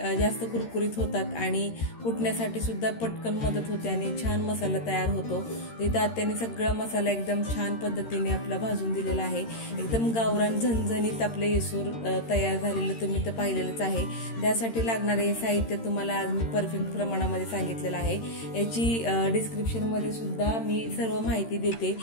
जास्त कुरकुरीत होतात आणि कुटण्यासाठी सुद्धा पटकन मदत होते आणि छान मसाला तयार होतो। तिथं आत्याने सगळा मसाला एकदम छान पद्धतीने आपला भाजून दिलेला आहे। एकदम गावरान झणझणीत आपले येसूर तयार झालेलं तुम्ही तर पाहिलेलंच आहे। त्यासाठी लागणारे साहित्य तुम्हाला आज मी परफेक्ट प्रमाणामध्ये सांगितलेलं आहे। याची डिस्क्रिप्शनमध्ये सुद्धा मी सर्व माहिती देते।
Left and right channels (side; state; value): right; late; 13 ms